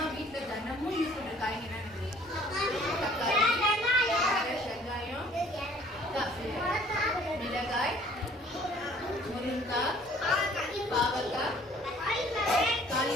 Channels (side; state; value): both; normal; correlation 0.55